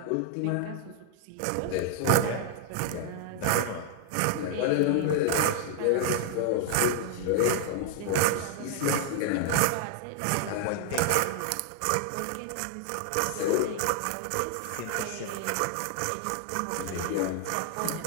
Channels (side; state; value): both; different; correlation 0.00